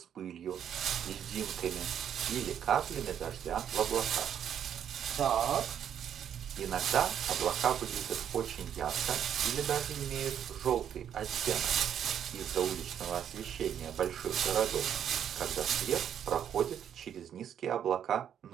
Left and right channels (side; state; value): left; quieter; 9.2 dB